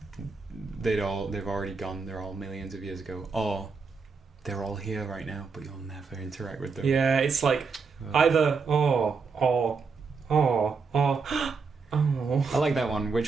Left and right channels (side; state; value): left; quieter; 4.9 dB